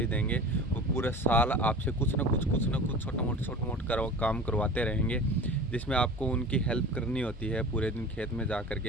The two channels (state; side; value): normal; both; correlation 0.37